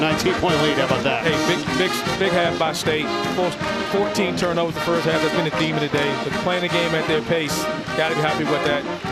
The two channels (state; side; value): identical; both; correlation 1.00